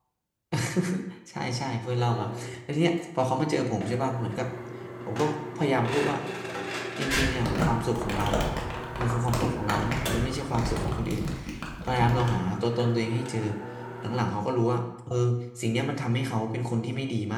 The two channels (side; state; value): both; identical; correlation 1.00